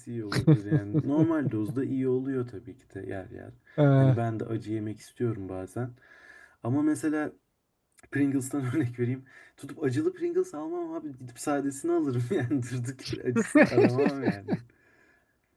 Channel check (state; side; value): identical; both; correlation 1.00